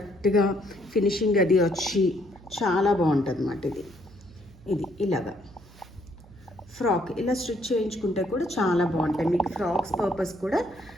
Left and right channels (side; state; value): right; noise; hum, 23 dB below the sound